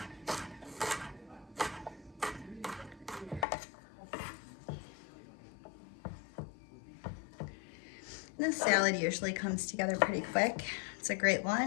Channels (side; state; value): right; drops out; at 3.5 s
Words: This salad usually comes together pretty quick. It's a great